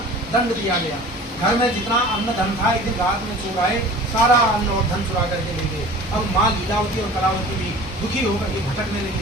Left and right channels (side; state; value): both; normal; correlation 0.42